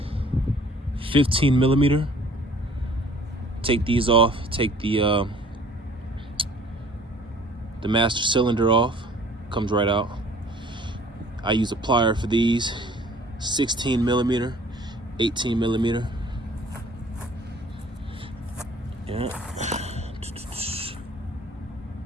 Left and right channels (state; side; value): normal; both; correlation 0.53